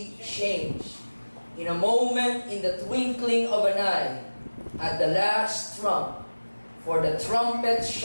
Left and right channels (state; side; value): inverted; both; correlation -1.00